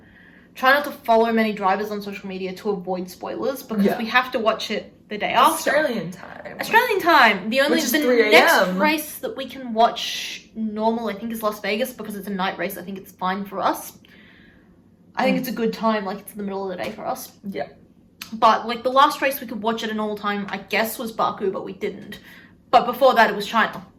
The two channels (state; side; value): identical; both; correlation 1.00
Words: try not to follow many drivers on social media to avoid spoilers because we have to watch it the day after. Australian time. The only Which is the 3 next a.m. race that we can watch normal, I think, is Las Vegas because it's a night race. I think it's fine for us. I think it's a good time, like it's in the middle of the day for us. Yeah. But like the last race we could watch at a normal time, I guess, was Baku, but we didn't. But before that, it was China.